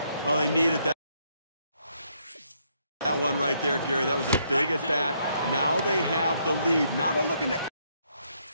Well, they needed that. That one right there, Gary, that was a big at bat. Now they have the lead. Now they're looking to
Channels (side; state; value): both; inverted; correlation -0.73